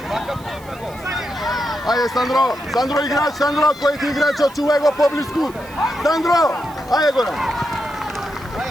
Ajde, Sandro igrač, koji ti igrač, očuvaj go po blisku. Sandro, ajde, Goran.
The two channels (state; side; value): noise; right; hiss, 23 dB below the sound